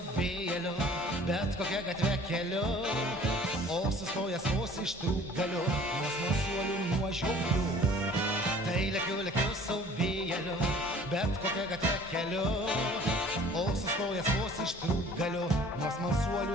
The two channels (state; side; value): normal; both; correlation 0.50